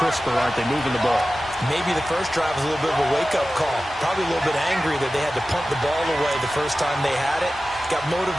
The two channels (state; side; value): normal; both; correlation 0.95